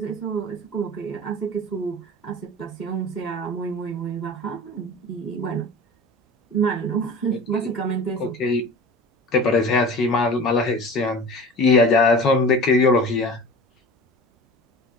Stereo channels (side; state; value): both; normal; correlation 0.37